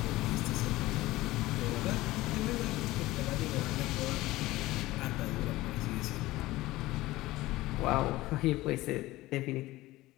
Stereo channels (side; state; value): right; quieter; 18.1 dB